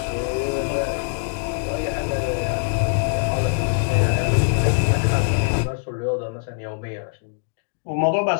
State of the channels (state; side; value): silent; right; digital silence